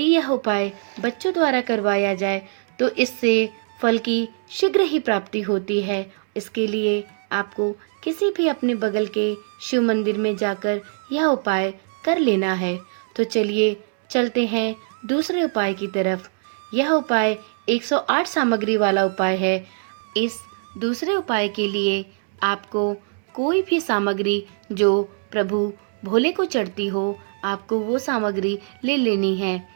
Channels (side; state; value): left; silent; digital silence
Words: यह उपाय बच्चों द्वारा करवाया जाए तो इससे फल की शीघ्र ही प्राप्ति होती है। इसके लिए आपको किसी भी अपने बगल के शिव मंदिर में जाकर यह उपाय कर लेना है। तो चलिए चलते हैं दूसरे उपाय की तरफ। यह उपाय 108 सामग्री वाला उपाय है। इस दूसरे उपाय के लिए आपको कोई भी सामग्री जो प्रभु भोले को चढ़ती हो, आपको वो सामग्री ले लेनी है।